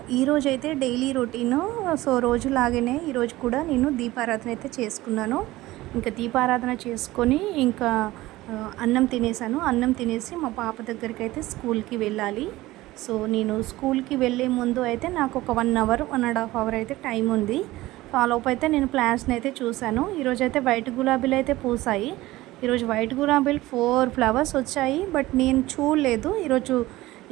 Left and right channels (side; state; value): left; quieter; 17.9 dB